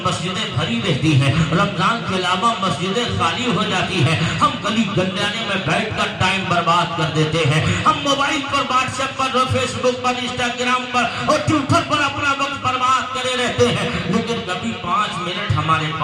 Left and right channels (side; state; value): both; identical; correlation 1.00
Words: مسجدیں بھری رہتی ہیں، رمضان کے علاوہ مسجدیں خالی ہو جاتی ہیں، ہم گلی گنجانے میں بیٹھ کر ٹائم برباد کر دیتے ہیں، ہم موبائل پر، واٹس ایپ پر، فیس بک پر، انسٹاگرام پر اور ٹویٹر پر اپنا وقت برباد کرے رہتے ہیں، لیکن کبھی 5 منٹ ہمارے